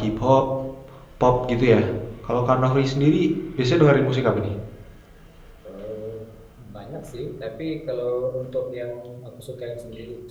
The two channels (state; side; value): identical; both; correlation 1.00